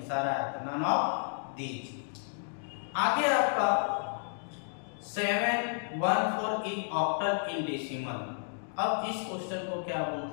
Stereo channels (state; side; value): silent; right; digital silence